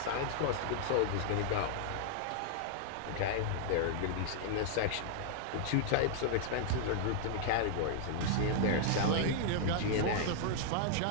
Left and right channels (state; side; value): different; both; correlation -0.01